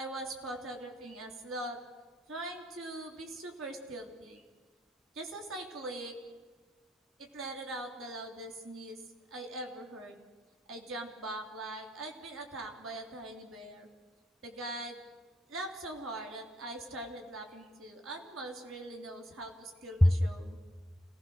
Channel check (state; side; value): normal; both; correlation 0.73